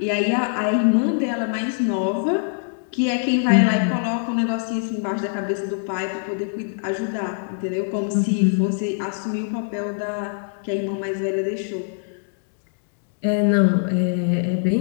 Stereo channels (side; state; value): right; silent; digital silence